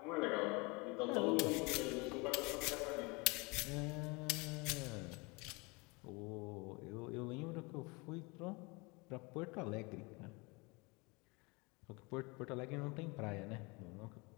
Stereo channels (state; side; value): quieter; right; 27.7 dB